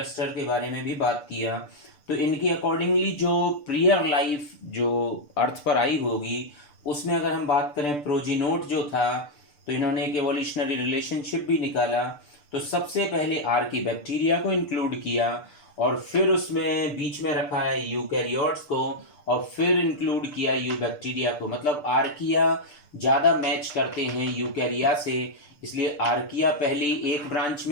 के बारे में भी बात किया। तो इनकी अकॉर्डिंगली जो प्रियर लाइफ जो अर्थ पर आई होगी, उसमें अगर हम बात करें प्रोजीनोट जो था, तो इन्होंने एक एवोल्यूशनरी रिलेशनशिप भी निकाला। तो सबसे पहले आर्की बैक्टीरिया को इंक्लूड किया, और फिर उसमें बीच में रखा है यूकैरियोट्स को, और फिर इंक्लूड किया यू बैक्टीरिया को। मतलब आर्किया ज़्यादा मैच करते हैं यूकैरिया से, इसलिए आर्किया पहली एक ब्रांच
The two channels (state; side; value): late; right; 6.8 ms